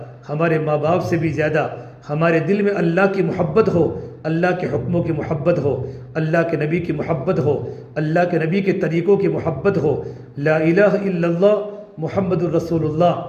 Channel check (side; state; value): both; identical; correlation 1.00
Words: ہمارے ماں باپ سے بھی زیادہ ہمارے دل میں اللہ کی محبت ہو، اللہ کے حکموں کی محبت ہو، اللہ کے نبی کی محبت ہو، اللہ کے نبی کے طریقوں کی محبت ہو۔ لا الہ الا اللہ محمد الرسول اللہ،